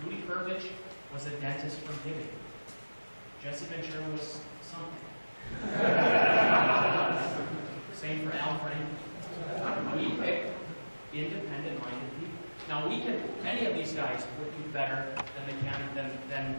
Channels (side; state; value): both; inverted; correlation -1.00